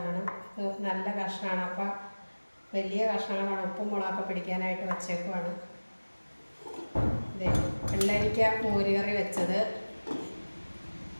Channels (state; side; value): inverted; both; correlation -1.00